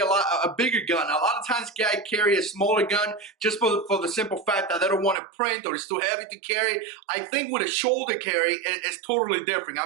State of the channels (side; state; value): left; drops out; at 5.2 s